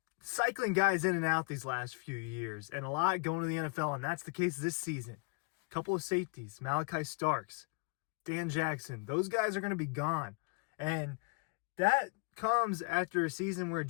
cycling guys in and out these last few years, and a lot going to the NFL, and that's the case this season. A couple of safeties, Malachi Starks, Dan Jackson, those guys are going to be gone. And that comes after a season where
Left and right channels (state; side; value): quieter; right; 33.3 dB